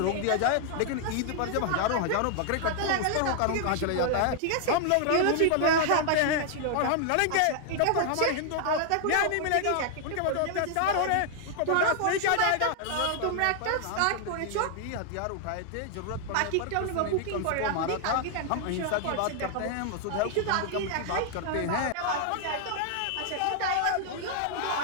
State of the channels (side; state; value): both; different; correlation 0.00